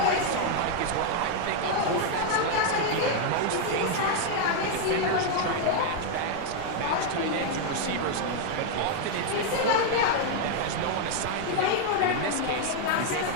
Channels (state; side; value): different; both; correlation 0.00